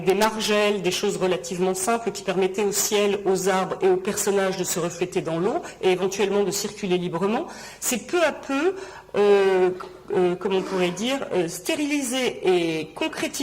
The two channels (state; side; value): identical; both; correlation 1.00